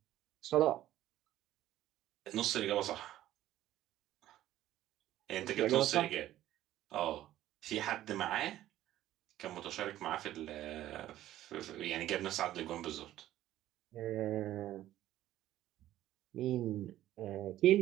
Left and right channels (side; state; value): left; quieter; 13.6 dB